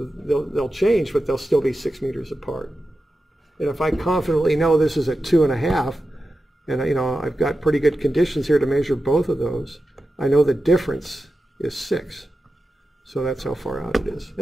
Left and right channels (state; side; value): normal; both; correlation 0.92